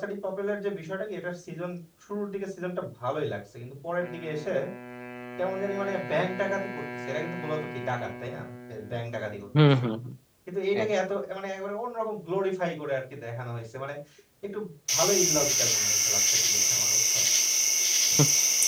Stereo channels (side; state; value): both; identical; correlation 1.00